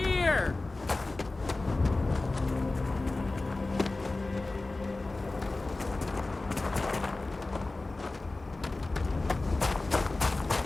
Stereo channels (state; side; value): quieter; right; 3.2 dB